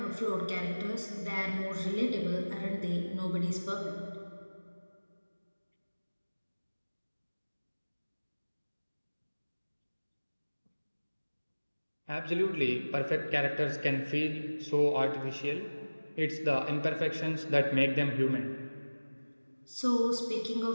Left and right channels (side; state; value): both; inverted; correlation -1.00